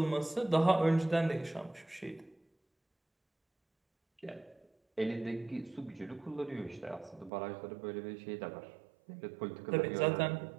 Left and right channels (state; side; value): drops out; left; at 7.3 s